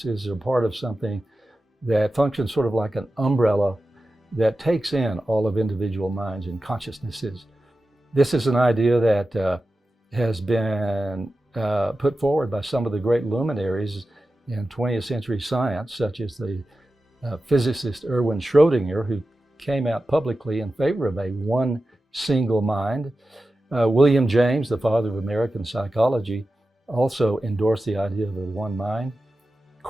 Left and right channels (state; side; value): normal; both; correlation 0.93